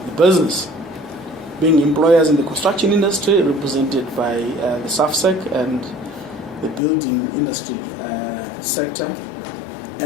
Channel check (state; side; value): drops out; right; at 6.8 s